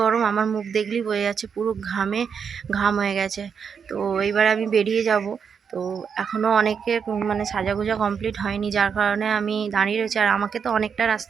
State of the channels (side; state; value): left; quieter; 6.7 dB